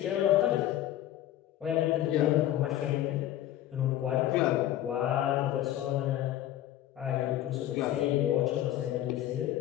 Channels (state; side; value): quieter; right; 13.0 dB